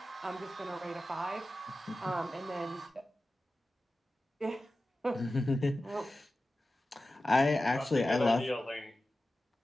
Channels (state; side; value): normal; both; correlation 0.94